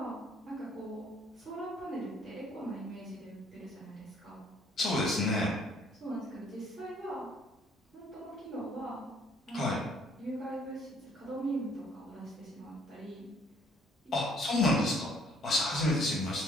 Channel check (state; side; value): normal; both; correlation 0.62